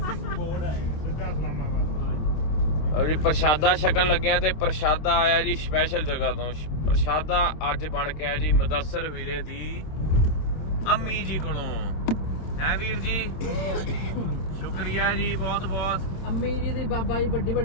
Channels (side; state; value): right; late; 26 ms